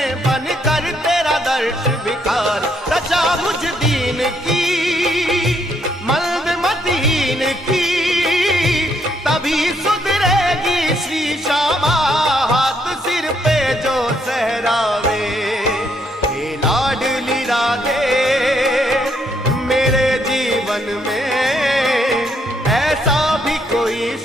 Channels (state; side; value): normal; both; correlation 0.73